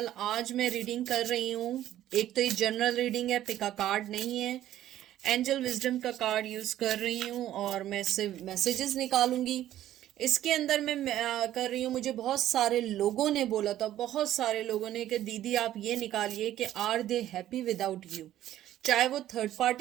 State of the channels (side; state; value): left; quieter; 12.8 dB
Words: आज मैं reading कर रही हूँ। एक तो ये जनरल रीडिंग है, पिका कार्ड नहीं है। एंजल विजडम का कार्ड यूज कर रही हूँ और मैं इससे मैसेजेस निकालूंगी। इसके अंदर मैं कर रही हूँ। मुझे बहुत सारे लोगों ने बोला था, बहुत सारे लोगों ने, कि दीदी आप ये निकालिए कि are they happy without you. चाहे वो थर्ड